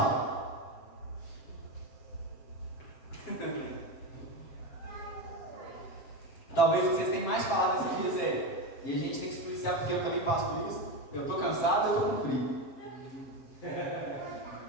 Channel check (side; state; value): right; late; 7.3 ms